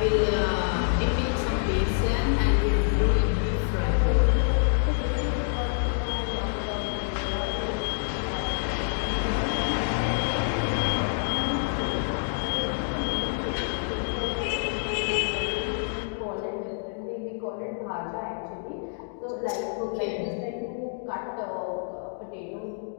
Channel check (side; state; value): right; silent; digital silence